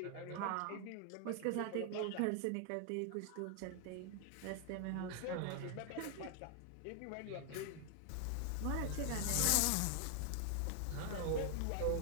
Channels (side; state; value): both; different; correlation 0.00